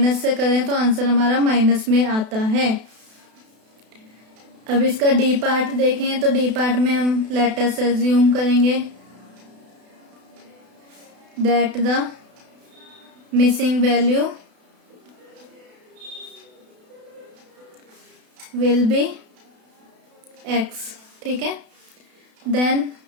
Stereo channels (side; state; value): left; late; 32 ms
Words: से करें तो आंसर हमारा माइनस में आता है। अब इसका डी पार्ट देखें तो डी पार्ट में हम लेट अस अज्यूम करेंगे that the missing value will be x। ठीक है, देन